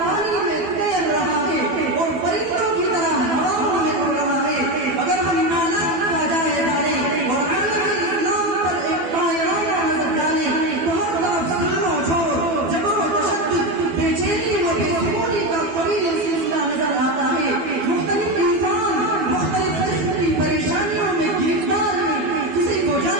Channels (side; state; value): left; late; 12 ms